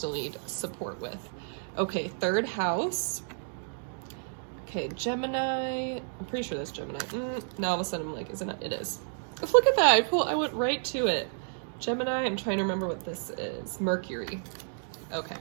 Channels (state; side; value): silent; left; digital silence